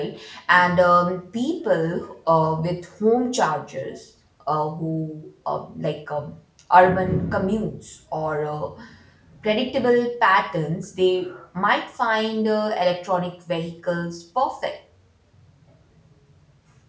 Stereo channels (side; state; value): both; identical; correlation 1.00